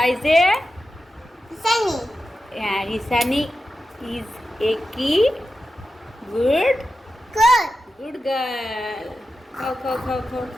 Sunny. রিসানি ইজ এ কি গুড Good. Good girl. খাও খাও খাও খাও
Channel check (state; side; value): normal; both; correlation 0.91